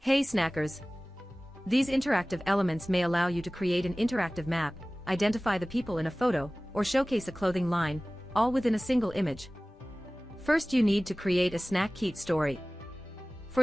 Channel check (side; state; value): both; normal; correlation 0.98